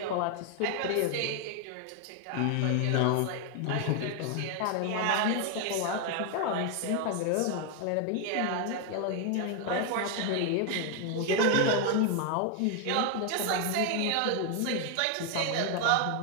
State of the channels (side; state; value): both; different; correlation 0.01